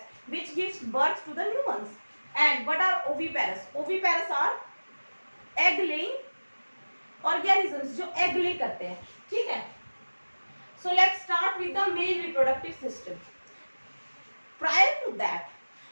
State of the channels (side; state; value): both; inverted; correlation -1.00